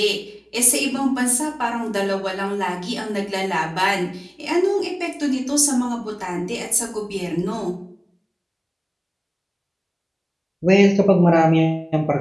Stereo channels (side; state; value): both; identical; correlation 1.00